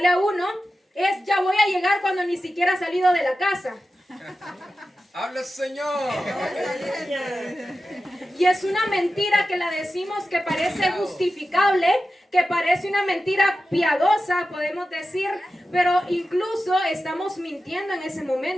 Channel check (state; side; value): normal; both; correlation 0.93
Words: a uno es ya voy a llegar cuando ni siquiera ha salido de la casa. Habla, Señor. Y es una mentira que la decimos que parece justificable, que parece una mentira piadosa, podemos decir, pero incluso estamos mintiendo en ese